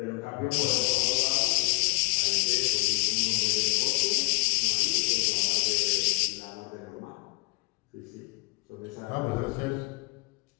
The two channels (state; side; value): quieter; right; 30.1 dB